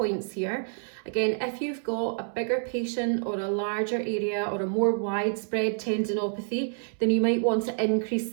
here. Again, if you've got a bigger patient or a larger area or a more widespread tendinopathy, then you might want to increase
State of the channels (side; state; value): left; silent; 59 dB below the other